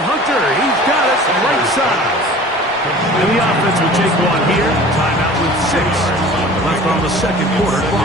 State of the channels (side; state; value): both; normal; correlation 0.44